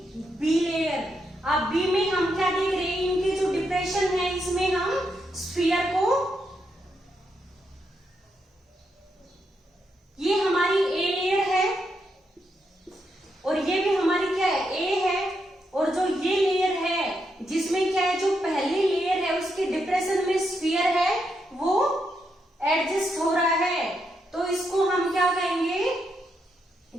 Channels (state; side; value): normal; both; correlation 0.81